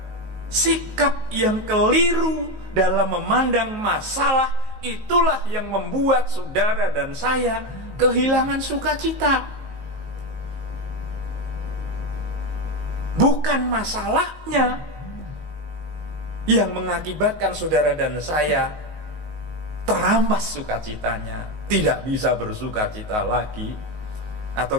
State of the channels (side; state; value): left; late; 19 ms